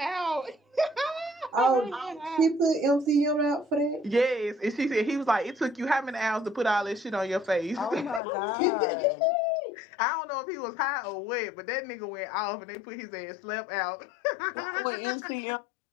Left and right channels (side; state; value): right; drops out; at 8.2 s